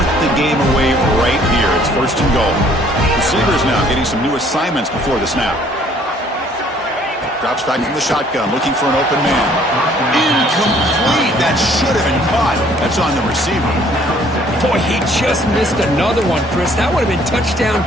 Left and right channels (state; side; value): normal; both; correlation 0.60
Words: the game away right here. It's first and goal. Receivers now getting some new assignments before the snap. Drops back from the shotgun, looking for an open man. Incomplete. That should have been caught. That's on the receiver. Boy, he just missed another one, Chris. That would have been touchdown